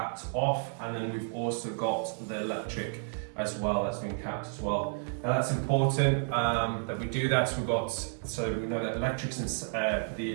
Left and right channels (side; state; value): left; silent; 57 dB below the other